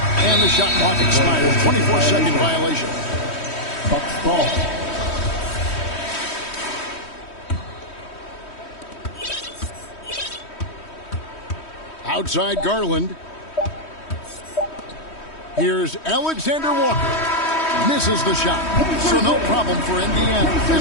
And the shot clock expires. 24-second violation. Bucks ball. Outside Garland. Here's Alexander Walker. Misses the shot. So no problem for Indiana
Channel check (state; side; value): late; right; 3.1 ms